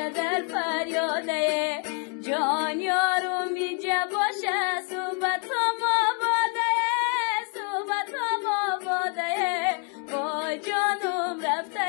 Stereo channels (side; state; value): right; quieter; 36.7 dB